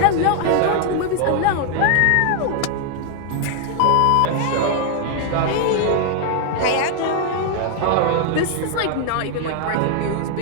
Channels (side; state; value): both; different; correlation 0.00